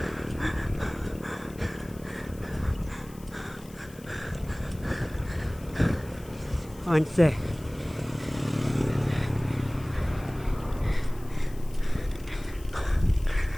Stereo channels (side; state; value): left; noise; hiss, 22 dB below the sound